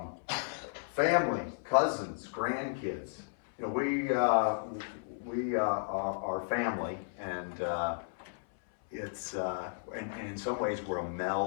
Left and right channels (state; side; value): silent; right; 55 dB below the other